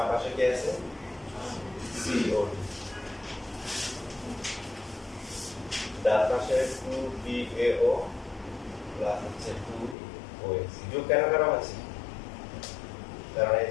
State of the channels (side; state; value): right; drops out; at 10.0 s